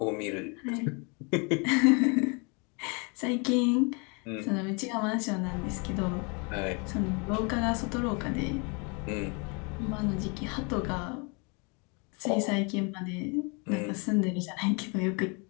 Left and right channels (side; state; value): right; quieter; 32.5 dB